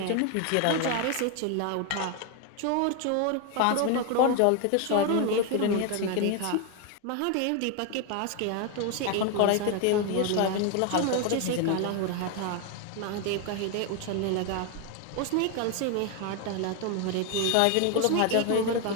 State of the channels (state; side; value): different; both; correlation 0.01